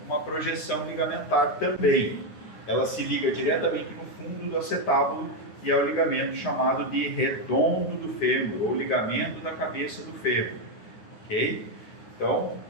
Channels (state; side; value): late; right; 9.9 ms